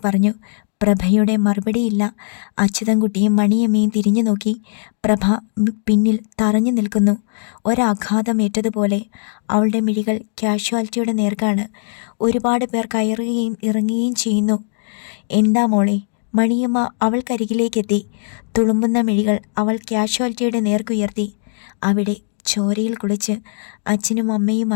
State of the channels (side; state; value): right; silent; digital silence